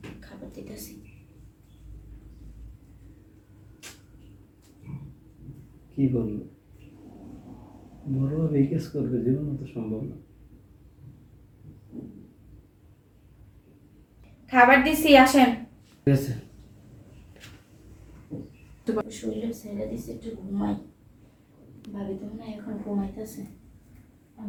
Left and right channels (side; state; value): both; identical; correlation 1.00